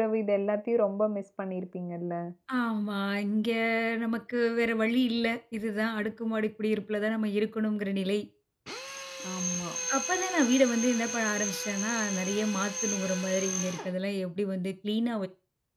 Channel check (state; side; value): identical; both; correlation 1.00